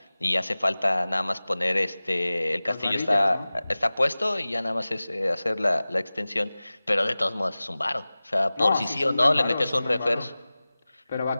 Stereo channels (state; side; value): inverted; both; correlation -0.97